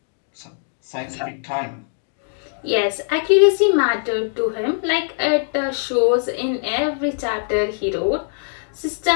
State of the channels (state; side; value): silent; right; digital silence